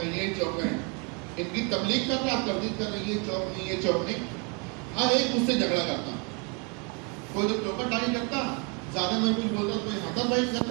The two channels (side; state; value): left; quieter; 33.1 dB